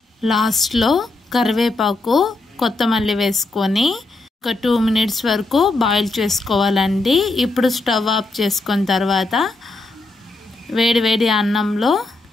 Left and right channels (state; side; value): quieter; right; 3.1 dB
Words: లాస్ట్లో కరివేపాకు, కొత్తమల్లి వేసుకొని ఒక 2 మినిట్స్ వరకు బాయిల్ చేసుకోవాలండి. ఇప్పుడు స్టవ్ ఆఫ్ చేసుకున్న తర్వాత వేడి అన్నంలో